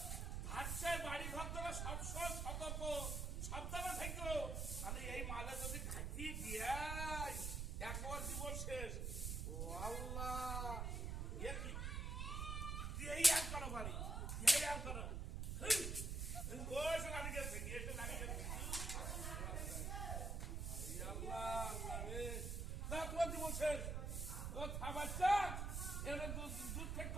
ভাষায় বাড়ি ঘর ধরে সবসময় সতর্ক সাবধানে থাকো আমি এই মালে যদি ঘাটিয়ে দিয়ে একবার জীবন শেষ ও আল্লাহ এ কি দিয়েই আর করো বাড়ি দিয়েই আর করো এসে লাড়ি গেছে এসে লাড়ি গেছে আল্লাহ আল্লাহ রে না তোমার জীবন শেষ তোর খাবার চাক এর দুধ খেতে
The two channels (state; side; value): noise; right; rumble, 2 dB below the sound